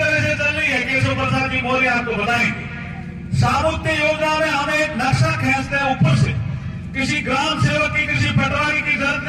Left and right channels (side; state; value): both; identical; correlation 1.00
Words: से चल रही है, केशव प्रसाद जी मौर्य आपको बताएंगे। सामुत्य योजना में हम एक नक्शा खींचते हैं ऊपर से। किसी ग्राम सेवक की, किसी पटवारी की जरूरत